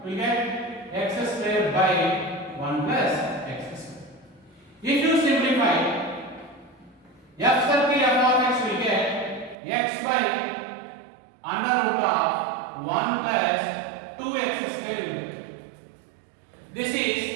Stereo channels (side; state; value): left; drops out; at 9.6 s